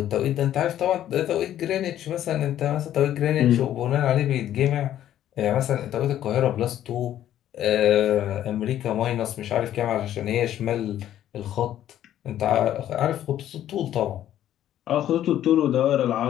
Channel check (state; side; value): quieter; right; 11.8 dB